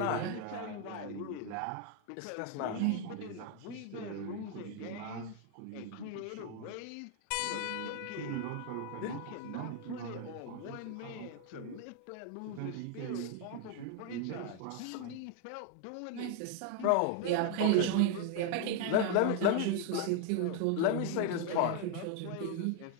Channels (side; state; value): both; different; correlation 0.00